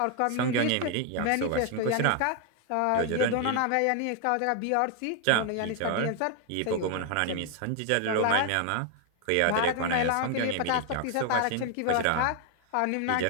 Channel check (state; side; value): different; both; correlation 0.00